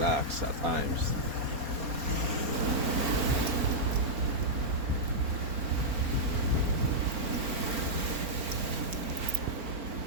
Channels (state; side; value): late; left; 4.1 ms